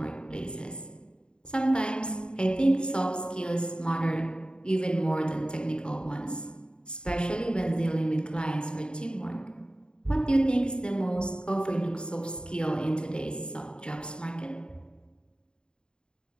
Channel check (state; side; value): late; right; 0.050 ms